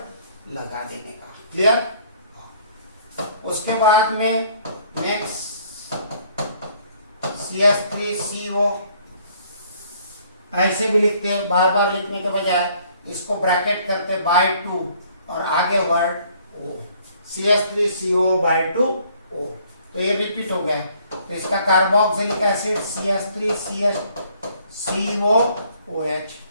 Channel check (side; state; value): both; inverted; correlation -0.61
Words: लगा देने का, क्लियर। उसके बाद में नेक्स्ट CH3CO ऐसे भी लिखते हैं, बार बार लिखने के बजाय इसको ब्रैकेट करते बाय 2 और आगे वर्ड O, CH3CO/2 O। तो ये रिपीट हो गया। तो इसका carboxylic acid CH3COOH,